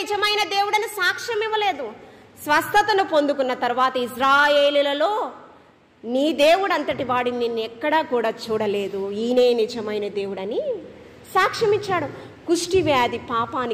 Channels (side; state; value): both; identical; correlation 1.00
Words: దేవుడని సాక్ష్యం ఇవ్వలేదు. స్వస్థతను పొందుకున్న తర్వాత ఇజ్రాయేలులలో నీ దేవుడు అంతటి వాడిని నిన్ను ఎక్కడా కూడా చూడలేదు, ఈయనే నిజమైన దేవుడని సాక్ష్యం ఇచ్చాడు. కుష్టి వ్యాధి